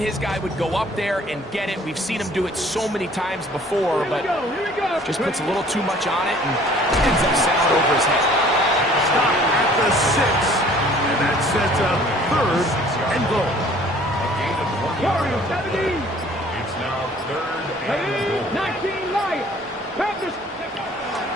guy would go up there and get it. We've seen him do it so many times before, but just puts a little too much on it and ends up sailing over his head. Stop at the 6. And that sets up third and goal. Warriors 17. It's now third and goal. 19 Lions. Panthers.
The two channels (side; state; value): both; normal; correlation 0.53